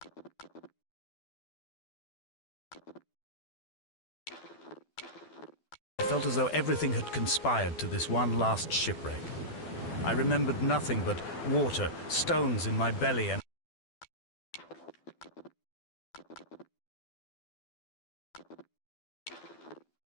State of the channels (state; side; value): late; right; 12 ms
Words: felt as though everything had conspired to this one last shipwreck. I remembered nothing but water, stones in my belly, and